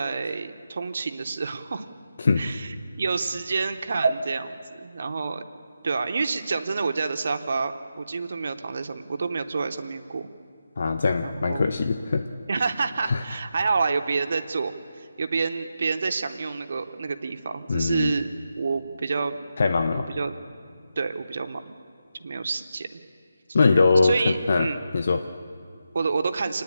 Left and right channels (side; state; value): both; inverted; correlation -0.87